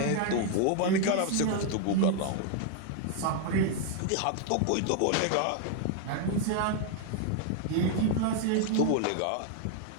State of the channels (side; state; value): both; different; correlation 0.00